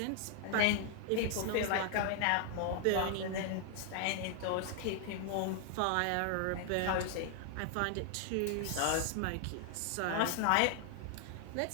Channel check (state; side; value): different; both; correlation 0.00